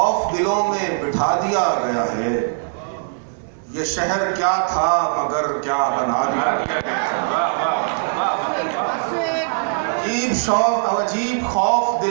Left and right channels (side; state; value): left; silent; digital silence